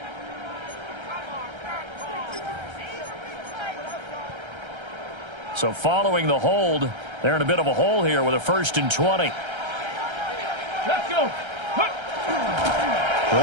So following the hold, they're in a bit of a hole here with a 1st and 20. Let's go.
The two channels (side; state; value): left; late; 1.3 ms